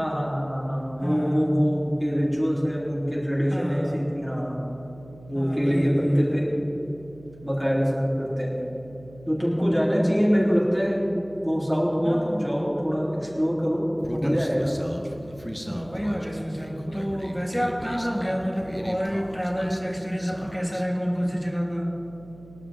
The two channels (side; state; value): right; noise; hum, 22 dB below the sound